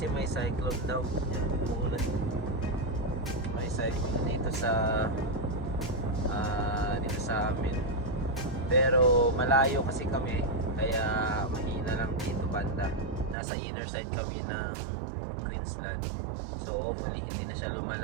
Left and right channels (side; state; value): left; drops out; at 13.4 s